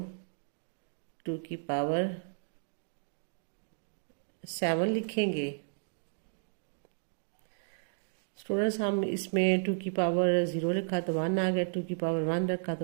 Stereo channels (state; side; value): silent; left; digital silence